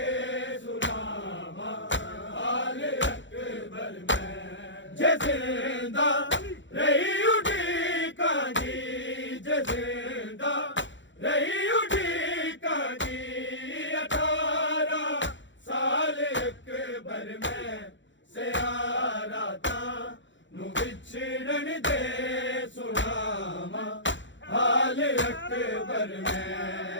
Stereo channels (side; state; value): right; late; 0.54 ms